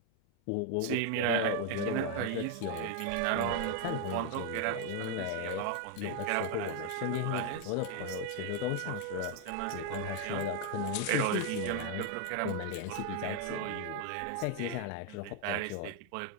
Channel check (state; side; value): different; both; correlation 0.01